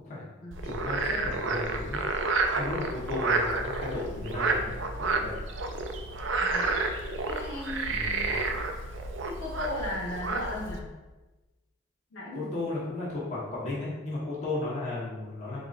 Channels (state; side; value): normal; both; correlation 0.32